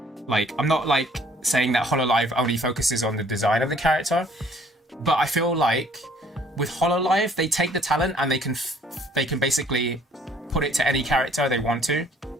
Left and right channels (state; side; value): normal; both; correlation 0.59